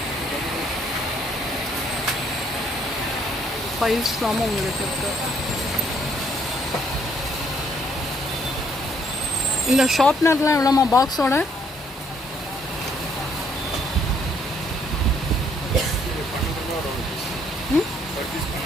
ஃபைல்ஸ் இல்லாமல் உங்களுக்கு இருக்கு. இந்த ஷார்ப்னர்லாம் எவ்வளோமா பாக்ஸோட?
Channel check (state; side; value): normal; both; correlation 0.67